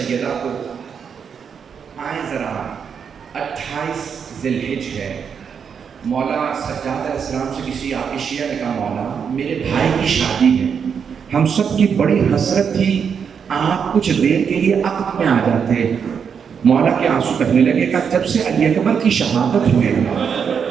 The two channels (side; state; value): left; quieter; 6.9 dB